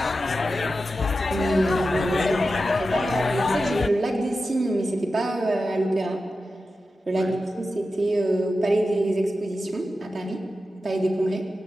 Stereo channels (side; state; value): both; normal; correlation 0.92